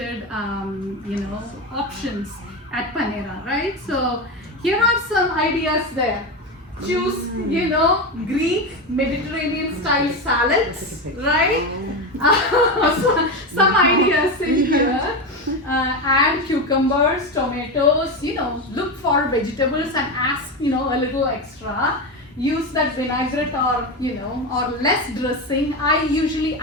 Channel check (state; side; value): normal; both; correlation 0.17